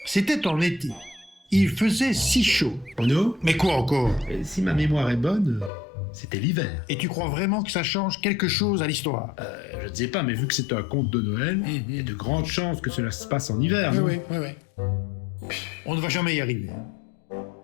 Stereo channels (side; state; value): right; drops out; at 5.7 s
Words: C'était en été. Il faisait si chaud. Bruno, Mais quoi encore? si ma mémoire est bonne, c'était l'hiver. Et tu crois vraiment que ça change quelque chose à l'histoire? Je ne sais pas, mais vu que c'est un conte de Noël, il y a de grandes chances que cela se passe en hiver, non? Oui. On ne va jamais y arriver.